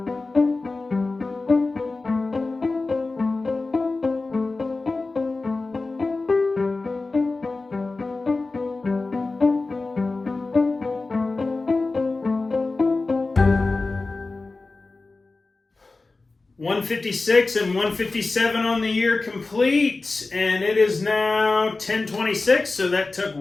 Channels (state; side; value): quieter; right; 3.5 dB